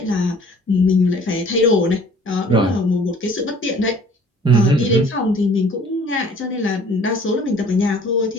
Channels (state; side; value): normal; both; correlation 0.52